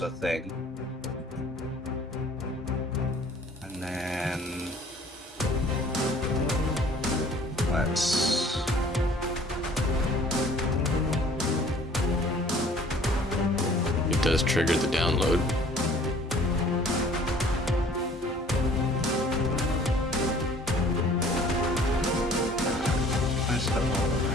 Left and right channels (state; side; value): normal; both; correlation 0.53